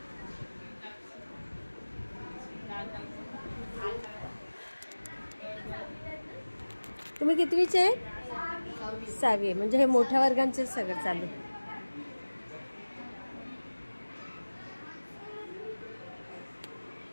तुम्ही कितवीचे आहे? 6वी. म्हणजे हे मोठ्या वर्गांचे सगळं चालू.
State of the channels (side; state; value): both; inverted; correlation -1.00